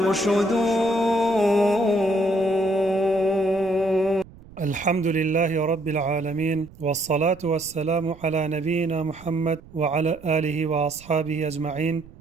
الحمد لله رب العالمين، والصلاة والسلام على نبينا محمد وعلى آله وأصحابه أجمعين.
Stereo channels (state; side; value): noise; right; rumble, 21 dB below the sound